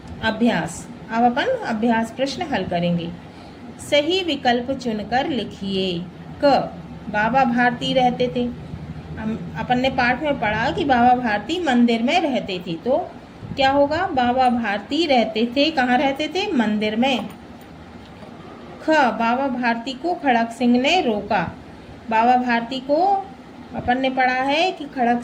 अभ्यास। अब अपन अभ्यास प्रश्न हल करेंगे। सही विकल्प चुनकर लिखिए। क, बाबा भारती रहते थे। अपन ने पाठ में पढ़ा कि बाबा भारती मंदिर में रहते थे, तो क्या होगा? बाबा भारती रहते थे, कहाँ रहते थे? मंदिर में। ख, बाबा भारती को खड़क सिंह ने रोका। बाबा भारती को अपन ने पढ़ा है कि खड़क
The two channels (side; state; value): both; identical; correlation 1.00